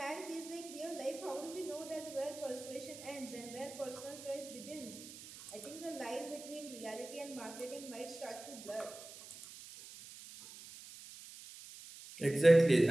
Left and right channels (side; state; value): right; noise; hiss, 15 dB below the sound